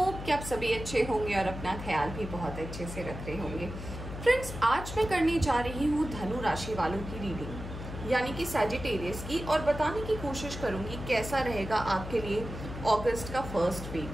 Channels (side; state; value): left; noise; hum, 9 dB below the sound